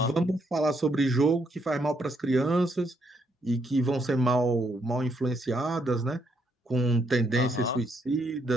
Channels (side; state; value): both; normal; correlation 0.74